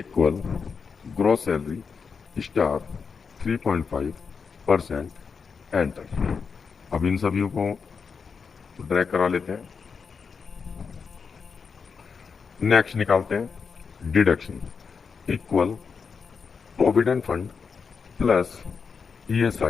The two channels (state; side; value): quieter; right; 5.6 dB